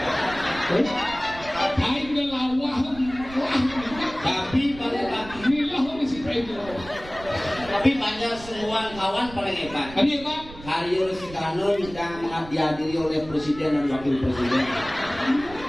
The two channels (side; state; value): right; noise; rumble, 16 dB below the sound